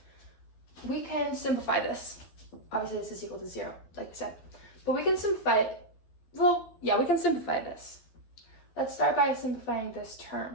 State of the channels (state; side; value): late; right; 12 ms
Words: We can simplify this. Obviously, this is equal to 0, like we said. But we can simplify it. Well, yeah, we can simplify this. Let's start by simplifying this